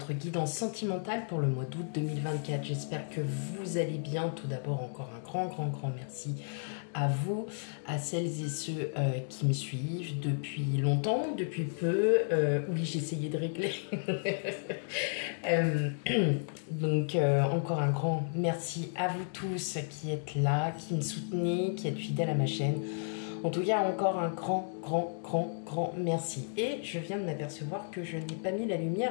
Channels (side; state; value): right; silent; digital silence